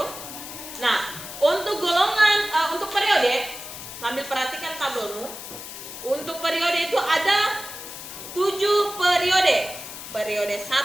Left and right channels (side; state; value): left; noise; hiss, 11 dB below the sound